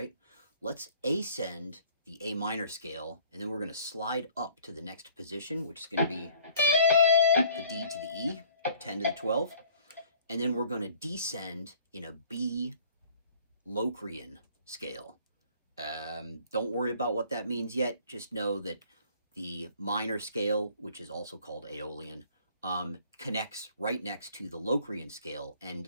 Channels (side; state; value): both; inverted; correlation -0.56